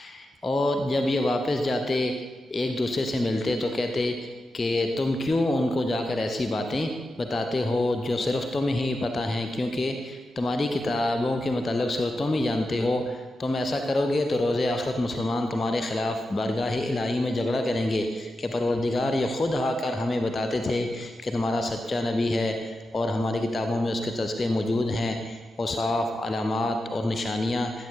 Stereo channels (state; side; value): normal; both; correlation 0.90